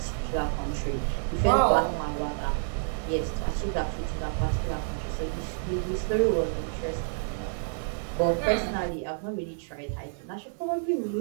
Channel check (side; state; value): left; silent; digital silence